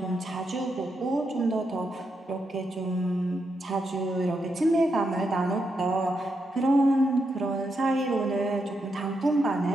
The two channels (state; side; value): normal; both; correlation 0.83